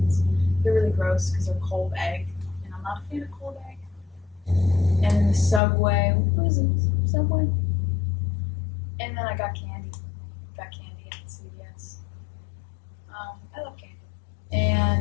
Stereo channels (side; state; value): right; drops out; at 5.6 s